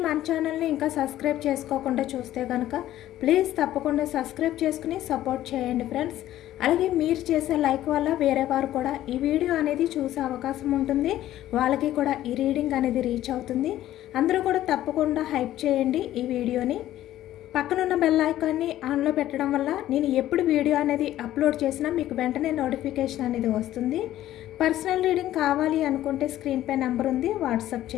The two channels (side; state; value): right; quieter; 13.5 dB